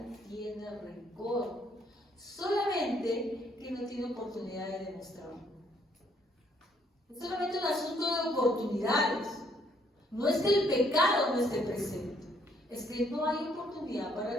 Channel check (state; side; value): normal; both; correlation 0.67